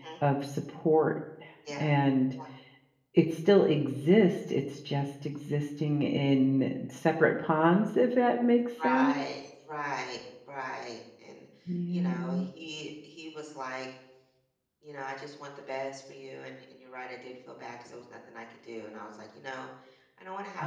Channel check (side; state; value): both; identical; correlation 1.00